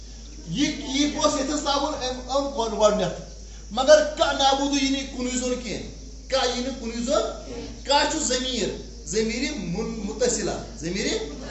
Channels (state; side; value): identical; both; correlation 1.00